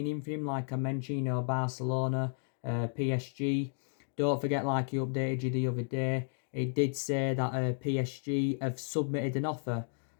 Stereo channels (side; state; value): right; silent; 56 dB below the other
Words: in for him, like I mentioned, Barcelona, PSG. Don't forget, like he updated you the other day, it did say that PSG have submitted an offer